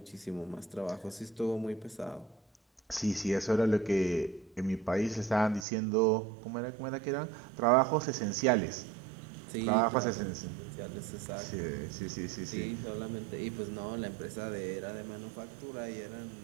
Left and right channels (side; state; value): left; drops out; at 5.7 s